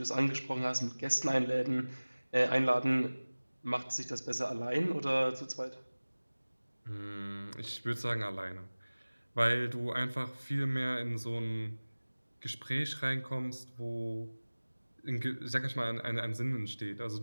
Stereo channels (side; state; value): both; inverted; correlation -1.00